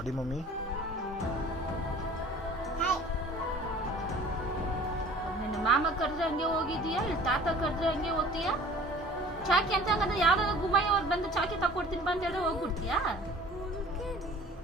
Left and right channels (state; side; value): normal; both; correlation 0.47